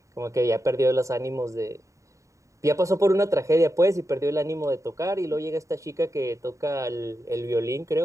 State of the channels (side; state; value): left; late; 0.15 ms